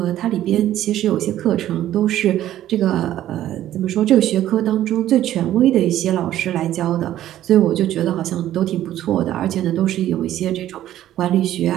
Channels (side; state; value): left; quieter; 12.7 dB